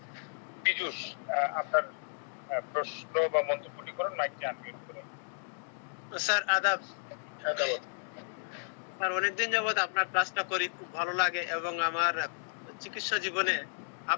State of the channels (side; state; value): right; silent; digital silence